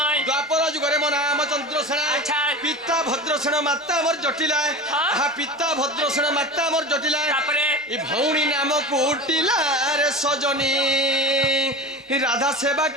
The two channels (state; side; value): normal; both; correlation 0.30